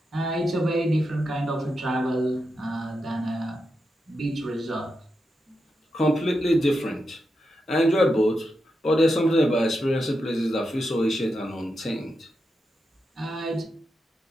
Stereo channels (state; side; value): normal; both; correlation 0.87